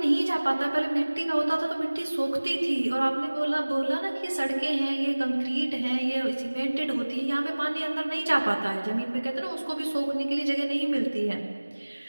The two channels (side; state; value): both; inverted; correlation -1.00